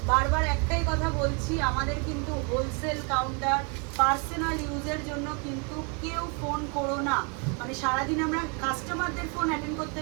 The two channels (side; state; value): left; quieter; 33.8 dB